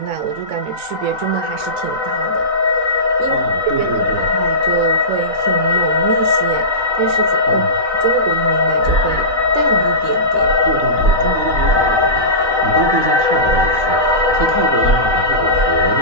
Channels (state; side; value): late; left; 3.9 ms